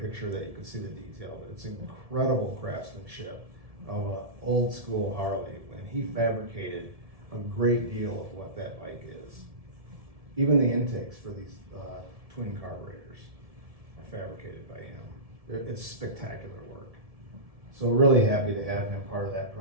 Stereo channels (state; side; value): late; left; 1.7 ms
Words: picture that you could see the detail, but it's incredible craftsmanship of an old school Harley, and he fabricated a great deal of what that bike is. Even the intakes for these twin carburetors are fabricated by him. It's spectacular work. So really happy to have him part of that